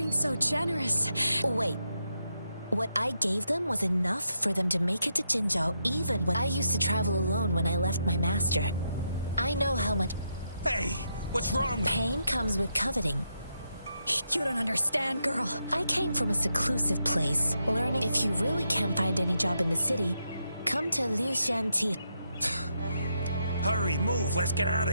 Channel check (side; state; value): both; inverted; correlation -0.82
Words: so generous... Wait. What I gave them was enough for them to make it to Jinzhou, even when I used to travel alone when I left my master. I know how much... Hey, what's wrong with... Pain comes with coveting. You don't understand, girl. I came from a seclusive place, learning if you really can't find any job in the city, come to Liu Shanti. Hurry, move, let's get out of